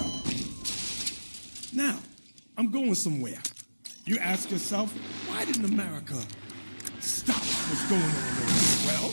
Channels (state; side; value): inverted; both; correlation -1.00